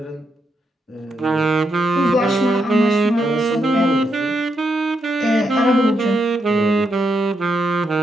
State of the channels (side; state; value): both; normal; correlation 0.81